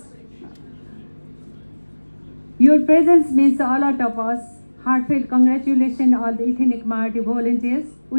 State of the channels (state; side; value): inverted; both; correlation -1.00